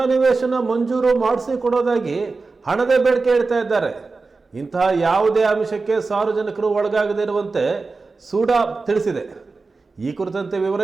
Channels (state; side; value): quieter; left; 4.0 dB